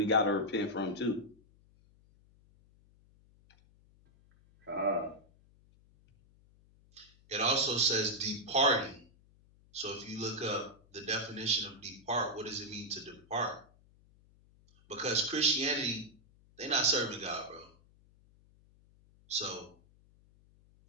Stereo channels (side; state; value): left; noise; hum, 29 dB below the sound